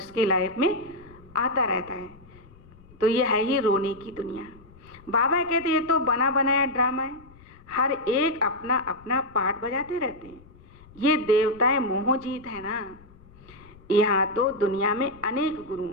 की लाइफ में आता रहता है, तो यह है ही रोने की दुनिया। बाबा कहते ये तो बना बनाया ड्रामा है। हर एक अपना अपना पार्ट बजाते रहते हैं। ये देवताएं मोहजीत है ना। यहाँ तो दुनिया में अनेक गुरु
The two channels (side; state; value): left; noise; rumble, 24 dB below the sound